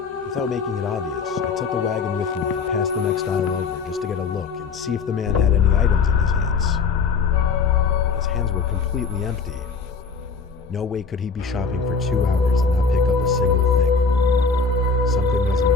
Without making it obvious, I took the wagon with me and passed the next aisle over just to get a look and see if the man had any items in his hands. His hands were completely empty. No way could he be shopping for 2 hours and not pick up a single thing. Something wasn't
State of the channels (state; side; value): quieter; right; 4.9 dB